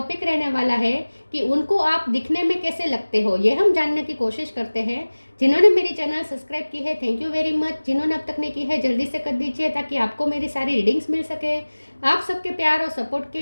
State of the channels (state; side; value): inverted; both; correlation -1.00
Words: रहने वाला है कि उनको आप दिखने में कैसे लगते हो। ये हम जानने की कोशिश करते हैं। जिन्होंने मेरी चैनल सब्सक्राइब की है, थैंक यू वेरी मच। जिन्होंने अब तक नहीं की है, जल्दी से कर दीजिए ताकि आपको मेरी सारी रीडिंग्स मिल सके। आप सबके प्यार और सपोर्ट के